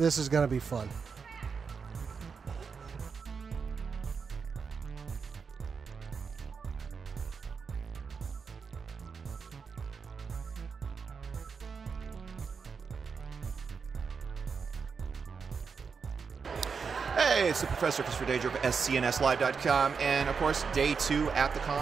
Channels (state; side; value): quieter; left; 5.6 dB